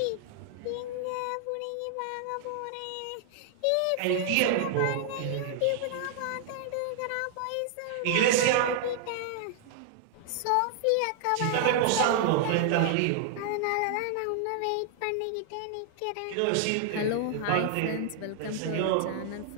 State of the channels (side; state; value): both; different; correlation 0.00